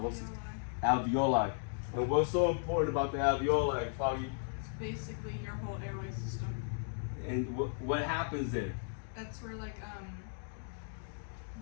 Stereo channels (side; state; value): right; silent; digital silence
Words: Alveoli. And what's so important about the alveoli, Foggy? It's basically your whole airway system. And what happens there? That's where the